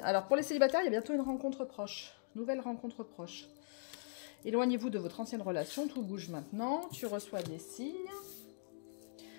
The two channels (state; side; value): silent; right; digital silence